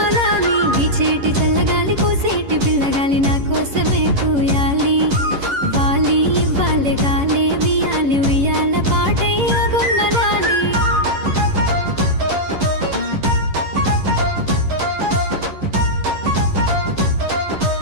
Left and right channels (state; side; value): late; left; 11 ms